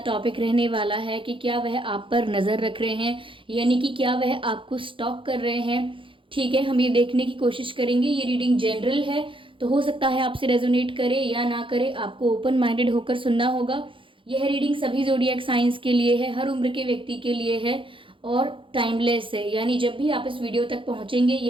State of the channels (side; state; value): left; late; 0.25 ms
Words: रहने वाला है कि क्या वह आप पर नज़र रख रहे हैं, यानी कि क्या वह आपको स्टॉक कर रहे हैं। ठीक है, हम ये देखने की कोशिश करेंगे। ये रीडिंग जनरल है, तो हो सकता है आपसे रेजोनेट करे या ना करे, आपको ओपन माइंडेड होकर सुनना होगा। यह रीडिंग सभी ज़ोडिएक साइंस के लिए है, हर उम्र के व्यक्ति के लिए है और टाइमलेस है, यानी जब भी आप इस वीडियो तक पहुँचेंगे